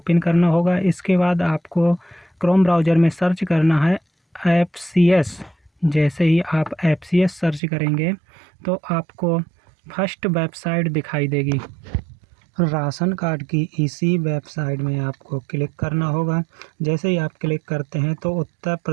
करना होगा। इसके बाद आपको क्रोम ब्राउज़र में सर्च करना है एफसीएस। जैसे ही आप एफसीएस सर्च करेंगे तो आपको फर्स्ट वेबसाइट दिखाई देगी। राशन कार्ड की इसी वेबसाइट में आपको क्लिक करना होगा। जैसे ही आप क्लिक करते हैं तो उत्तर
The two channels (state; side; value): drops out; left; at 7.6 s